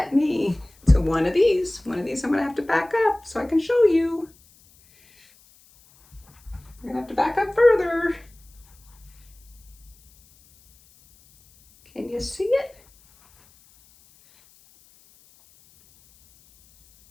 me to one of these I'm gonna have to back up so I can show you. I'm gonna have to back up further. Can you see it?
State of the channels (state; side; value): noise; left; hiss, 29 dB below the sound